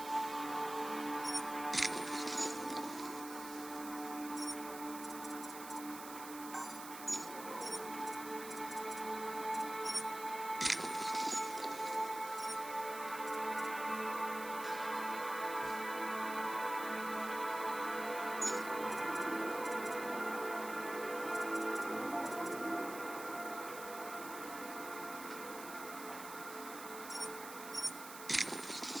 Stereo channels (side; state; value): right; noise; hiss, 11 dB below the sound